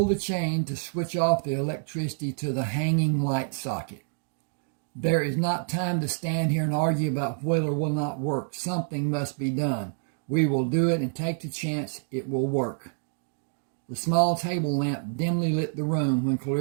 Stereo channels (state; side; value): silent; left; 60 dB below the other